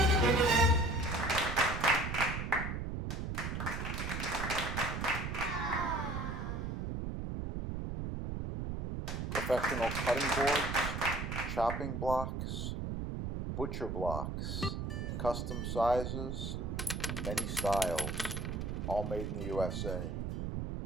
Professional cutting boards, chopping blocks, butcher blocks, custom sizes, many styles, all made in the USA.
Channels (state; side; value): noise; right; rumble, 3 dB below the sound